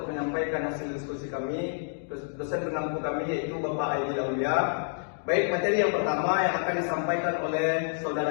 menyampaikan hasil diskusi kami. Dosen pengampu kami yaitu Bapak Aidil Aulia. Baik, materi yang pertama yang akan disampaikan oleh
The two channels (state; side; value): silent; right; digital silence